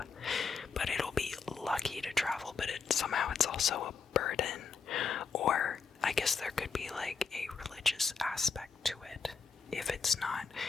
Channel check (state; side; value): quieter; right; 5.4 dB